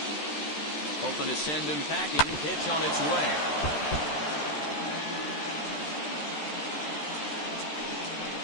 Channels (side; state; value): right; late; 13 ms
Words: Hoping to send him packing. Pitch on its way.